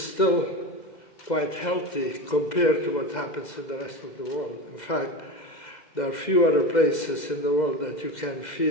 still quite healthy compared to what happens in the rest of the world. In fact, there are few other places in the world that you can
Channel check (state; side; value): late; right; 2.1 ms